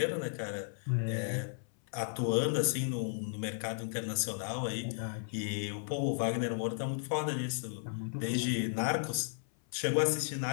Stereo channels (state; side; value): silent; right; 55 dB below the other